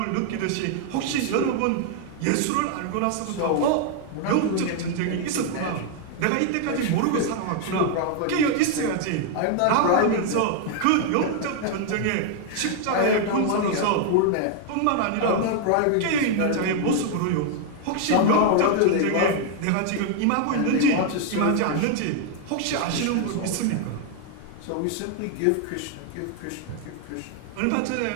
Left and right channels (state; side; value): different; both; correlation 0.00